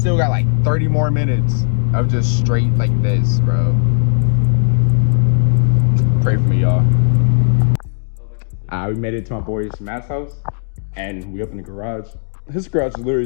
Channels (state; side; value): silent; right; digital silence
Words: got like 30 more minutes of just straight like this, bro. Pray for me, y'all. We made it to my boy's Matt's house and we opened the garage. His garage is literally